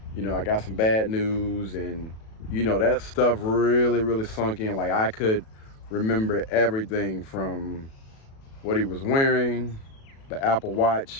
you know, I got some bad news, and you know, that stuff really sunk in. Like, I could remember everything from what he was wearing, the Apple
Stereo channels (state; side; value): late; right; 37 ms